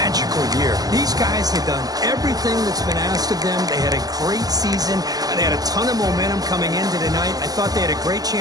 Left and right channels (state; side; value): late; left; 0.18 ms